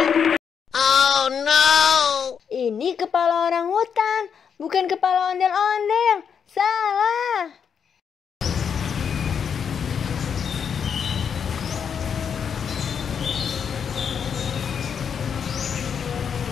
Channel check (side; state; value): right; quieter; 7.2 dB